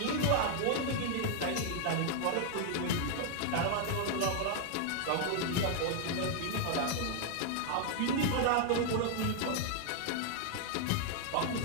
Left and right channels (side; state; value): both; different; correlation 0.00